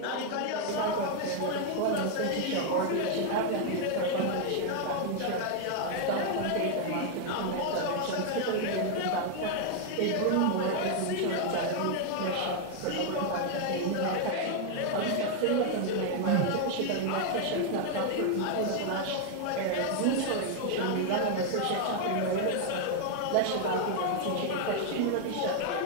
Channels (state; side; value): different; both; correlation 0.00